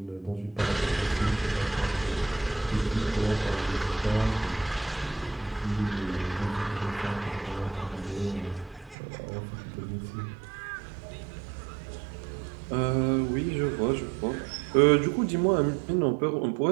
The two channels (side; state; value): left; drops out; at 9.0 s